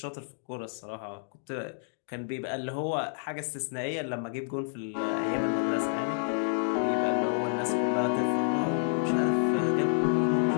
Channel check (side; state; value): right; silent; digital silence